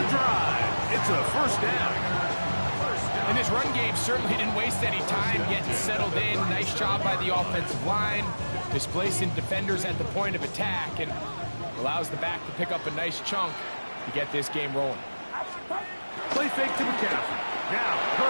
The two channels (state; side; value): inverted; both; correlation -1.00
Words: drive. It's a first down. And this run game certainly didn't waste any time getting settled in. Nice job by the offensive line, displacing defenders at the point of attack, and allows the back to pick up a nice chunk to get this game rolling. Play fake to McCaffrey. Now,